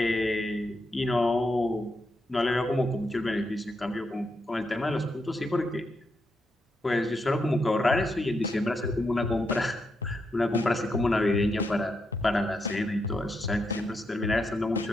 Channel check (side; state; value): both; normal; correlation 0.82